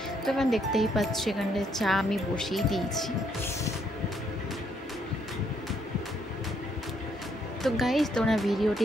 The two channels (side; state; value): both; normal; correlation 0.72